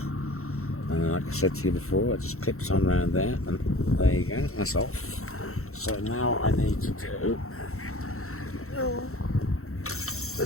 and then like I said to you before, it just clips on around there, and there you go, that's off. So now I need to do,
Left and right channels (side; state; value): right; late; 0.63 ms